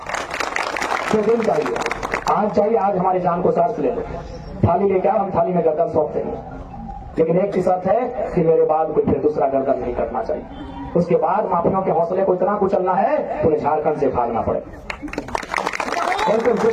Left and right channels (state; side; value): identical; both; correlation 1.00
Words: तो दिन चाहिए, आज चाहिए, आज हमारी जान को शर्त ले लो, थाली लेके आओ, हम थाली में गर्दन सौंप देंगे, लेकिन एक ही शर्त है कि मेरे बाद कोई फिर दूसरा गर्दन नहीं कटना चाहिए। उसके बाद माफियों के हौसले को इतना कुचलना है उन्हें झारखंड से भागना पड़े। बिल्कुल